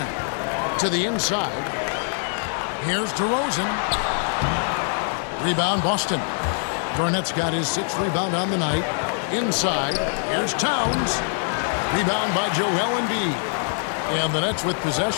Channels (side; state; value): right; silent; 57 dB below the other